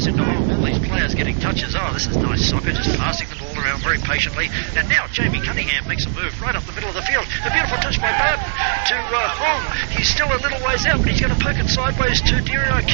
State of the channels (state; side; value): silent; left; digital silence